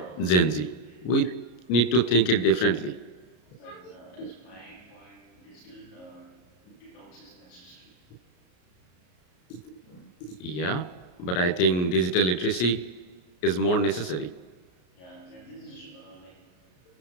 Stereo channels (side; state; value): right; late; 33 ms